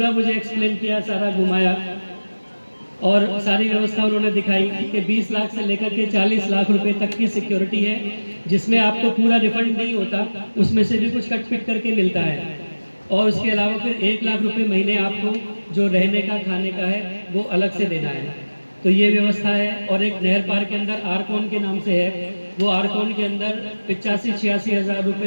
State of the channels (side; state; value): both; inverted; correlation -1.00